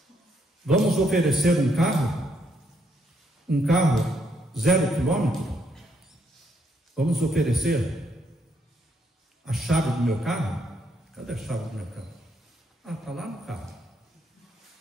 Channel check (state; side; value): normal; both; correlation 0.74